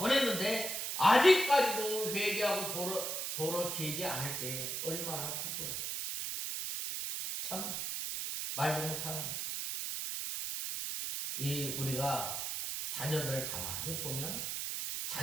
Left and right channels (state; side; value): noise; right; hiss, 2 dB below the sound